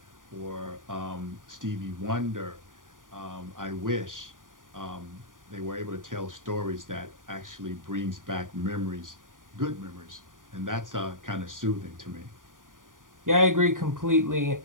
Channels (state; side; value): late; left; 0.89 ms